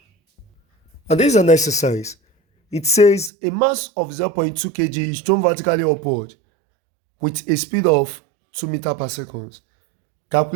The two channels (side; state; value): left; drops out; at 3.3 s